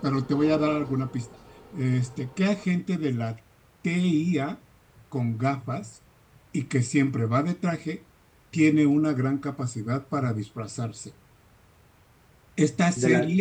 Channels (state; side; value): identical; both; correlation 1.00